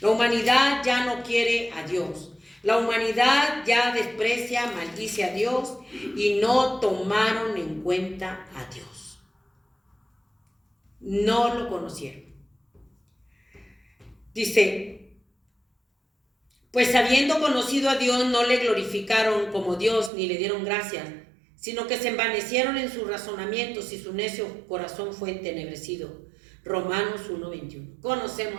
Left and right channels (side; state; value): left; drops out; at 20.1 s